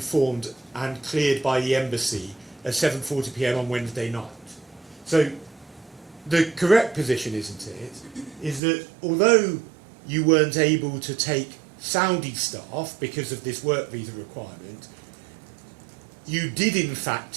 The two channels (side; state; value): left; drops out; at 8.6 s